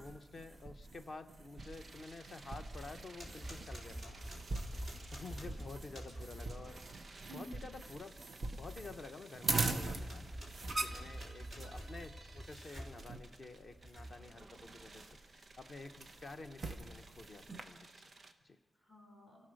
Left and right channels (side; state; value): both; normal; correlation 0.89